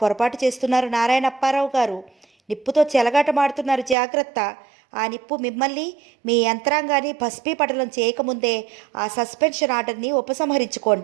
పొరపాటు చేస్తున్నారు నారాయణప్పారావు గారు. నిప్పుతో చెలగాటమాడుతున్నారు, జాగ్రత్త. ఆ నిప్పు మిమ్మల్ని, మీ యంత్రాంగాన్ని భస్మీపటలం చేయకముందే ఆ సస్పెన్షన్ ఆర్డర్ని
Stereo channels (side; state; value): left; drops out; at 4.0 s